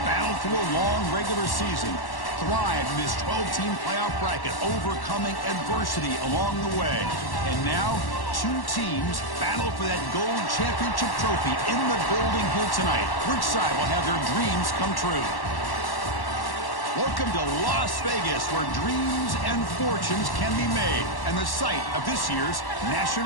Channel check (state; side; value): late; right; 1.1 ms